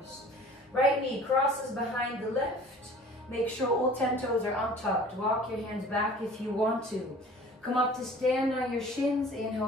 Right knee crosses behind the left. Make sure all 10 toes are untucked. Walk your hands back if you want to. Come up to stand on your shins. Inhale,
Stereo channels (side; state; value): both; normal; correlation 0.47